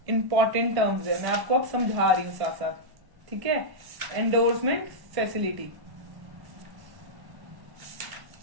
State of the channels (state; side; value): late; left; 1.1 ms